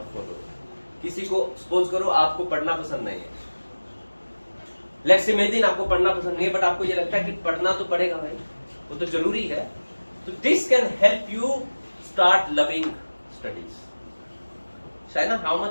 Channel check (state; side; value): inverted; both; correlation -1.00